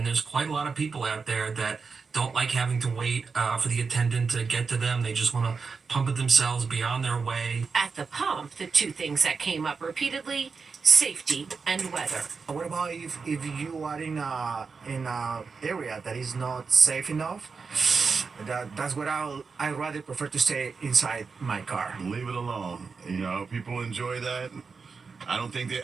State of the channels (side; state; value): left; quieter; 5.0 dB